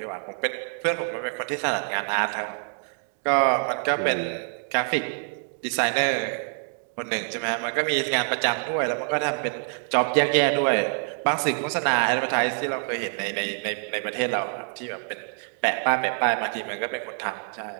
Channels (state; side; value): silent; left; 61 dB below the other